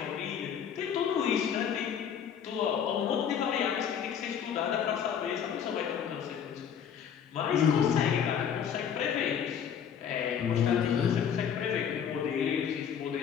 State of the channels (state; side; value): quieter; right; 8.1 dB